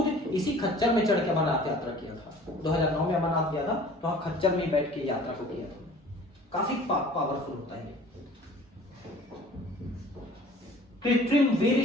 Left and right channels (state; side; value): normal; both; correlation 0.47